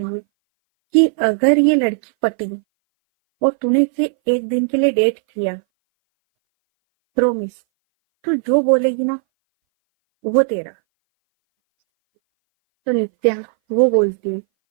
है कि अगर ये लड़की पटी और तूने इसे एक दिन के लिए डेट किया, प्रोमिस तू जो बोलेगी ना वो तेरा। तो नित्या वो बोलती है,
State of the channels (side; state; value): left; silent; 61 dB below the other